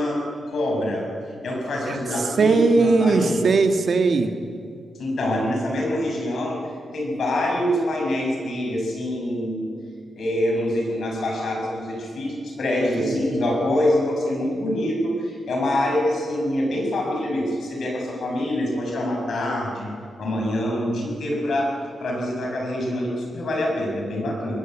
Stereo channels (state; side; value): normal; both; correlation 0.84